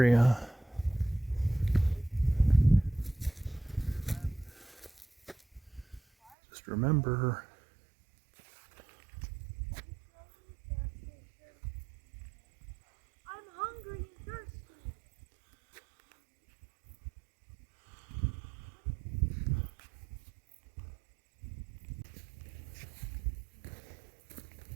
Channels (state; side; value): drops out; left; at 6.4 s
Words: just remember I'm hungry and thirsty.